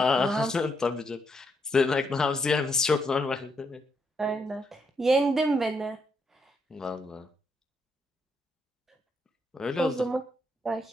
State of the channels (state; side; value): normal; both; correlation 0.77